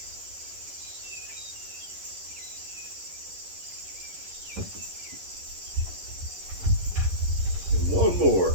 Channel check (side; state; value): left; late; 11 ms